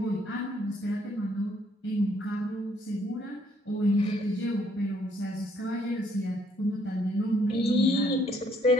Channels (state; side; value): normal; both; correlation 0.67